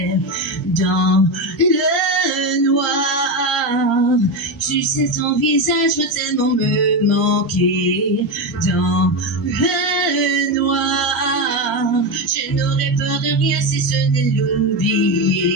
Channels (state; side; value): normal; both; correlation 0.14